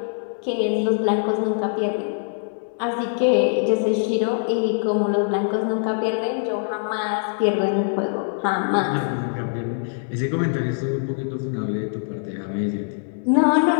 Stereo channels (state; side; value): silent; right; 63 dB below the other